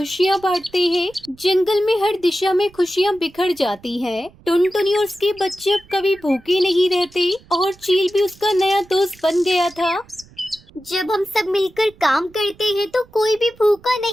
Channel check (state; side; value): noise; right; rumble, 26 dB below the sound